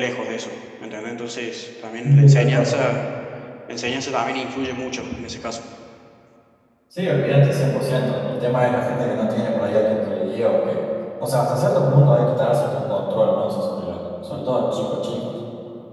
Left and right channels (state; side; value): identical; both; correlation 1.00